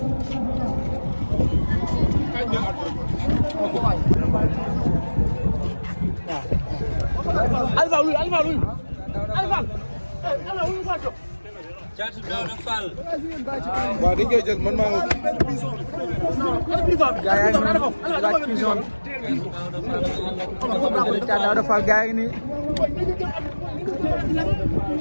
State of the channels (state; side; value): inverted; both; correlation -1.00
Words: Alpha luy Thiat Daouda Fall waaw dañ koy jël man maa ngi gaa yaa ngi noonu laaj prison bi Thiat Daouda Fall gaa yi nii